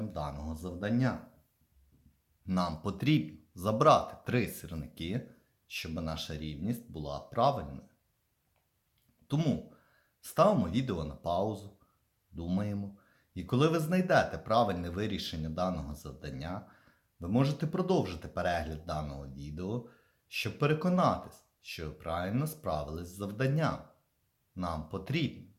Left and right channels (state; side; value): identical; both; correlation 1.00